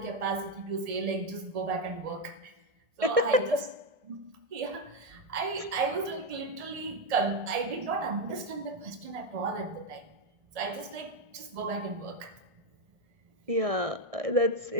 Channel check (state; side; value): late; left; 1.7 ms